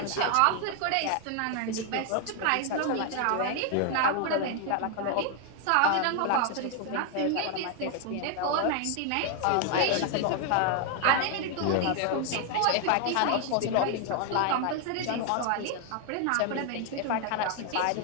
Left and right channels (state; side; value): different; both; correlation 0.00